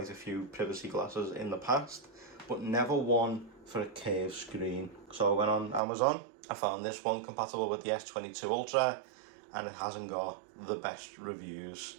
a few privacy glasses in the past, but never one for a curved screen. So I went on Amazon, I found this one compatible with the S22 Ultra, and it hasn't got the best reviews.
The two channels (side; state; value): left; drops out; at 5.8 s